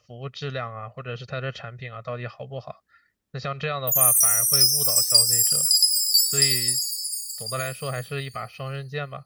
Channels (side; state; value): both; identical; correlation 1.00